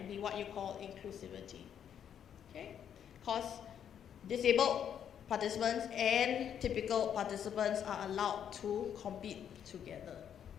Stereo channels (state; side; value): quieter; right; 8.9 dB